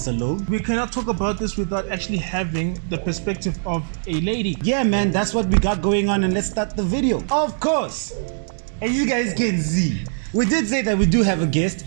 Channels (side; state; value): left; silent; digital silence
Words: alone. We cannot talk about this without actually having the perspective of a lady. Yeah, man, that's what we got going on, and let's start the video. Of course. As you guys can see, we did say that we do have a guest,